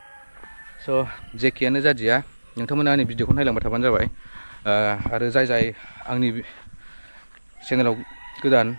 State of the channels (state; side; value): inverted; both; correlation -1.00